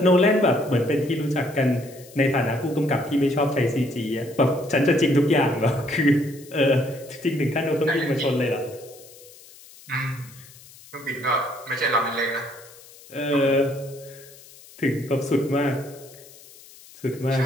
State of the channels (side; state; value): left; noise; hiss, 21 dB below the sound